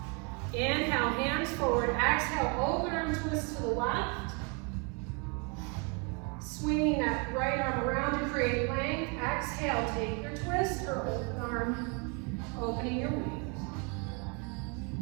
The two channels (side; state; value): left; quieter; 32.2 dB